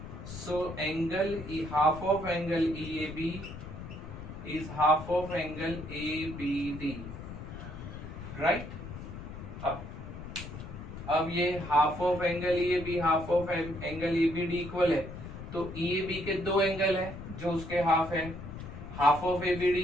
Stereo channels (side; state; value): left; noise; rumble, 10 dB below the sound